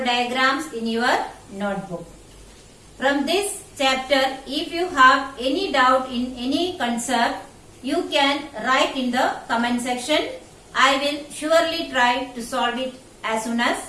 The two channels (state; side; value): identical; both; correlation 1.00